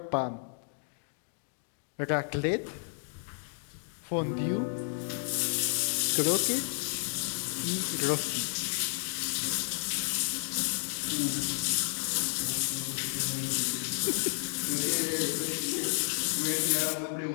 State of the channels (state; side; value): silent; right; digital silence